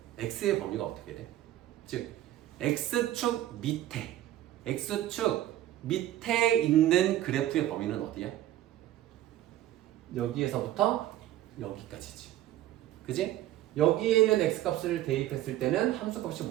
x의 범위가 어떻게 돼? 즉 x축 밑에 있는 그래프의 범위는 어디야? 여기에서부터 여기까지지. 그지? 여기에 있는 x값을 대입했을 때는 함수값이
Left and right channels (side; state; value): left; quieter; 13.5 dB